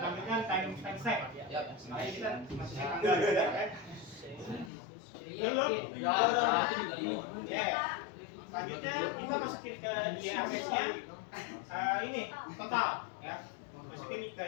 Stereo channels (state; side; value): drops out; right; at 4.7 s